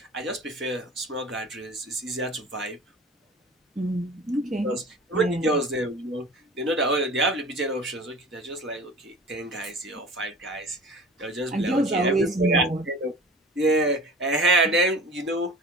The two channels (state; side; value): normal; both; correlation 0.40